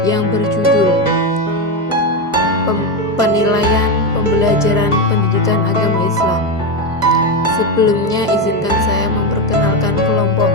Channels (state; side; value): normal; both; correlation 0.12